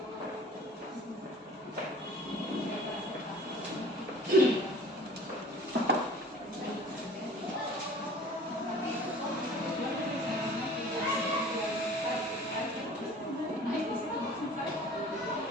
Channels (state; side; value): normal; both; correlation 0.46